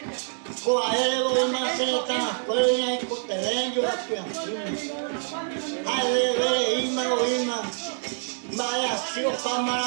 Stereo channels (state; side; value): silent; left; digital silence